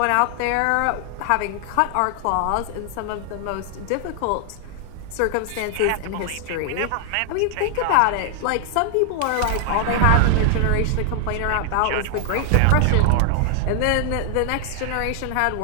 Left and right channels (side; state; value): both; different; correlation 0.00